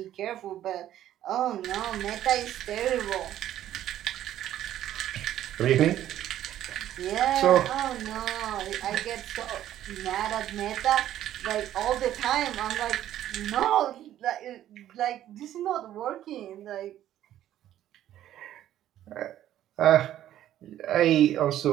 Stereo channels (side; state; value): left; quieter; 12.2 dB